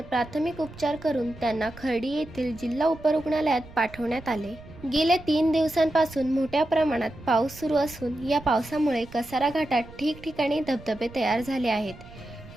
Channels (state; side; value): noise; right; rumble, 18 dB below the sound